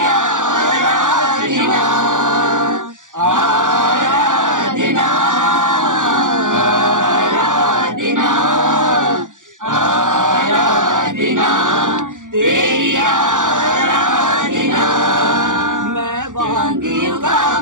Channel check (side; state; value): left; late; 0.87 ms